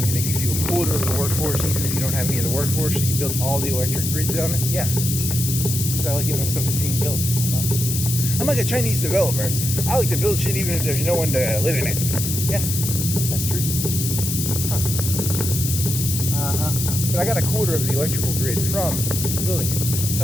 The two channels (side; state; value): left; noise; hiss, 3 dB below the sound